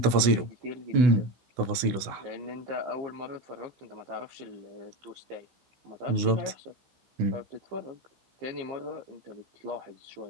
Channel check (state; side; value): late; left; 16 ms